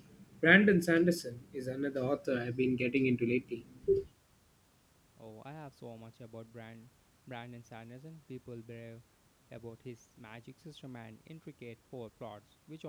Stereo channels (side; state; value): both; identical; correlation 1.00